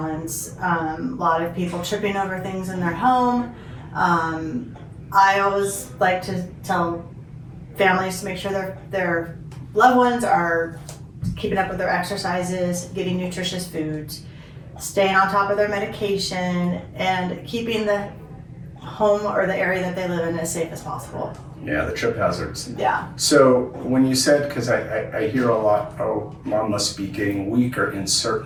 A lot of people tripping over things in their home. I always like to tell families to make sure their loved ones are keeping up with their exercises, getting nutritious foods, staying on top of their medication, and keeping the home or the area that they live in as safe as possible. Yeah, the trip hazards. Yeah. So when you said, because I hear a lot, oh, mom must be getting weaker in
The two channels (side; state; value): both; identical; correlation 1.00